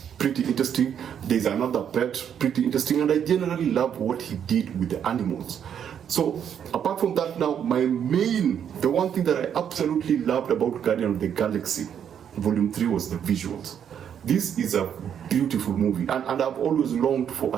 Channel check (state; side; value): quieter; left; 8.6 dB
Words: pretty interesting. There's another pet, pretty interesting, and I generally love what he did with the animals. So apart from that, now the one thing that I absolutely loved about Guardian of the Galaxy Volume 3 was the visuals. This is a beautiful movie, and I've always longed for